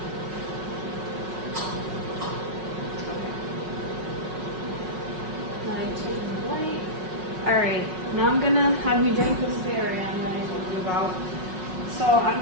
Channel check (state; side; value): late; left; 5.4 ms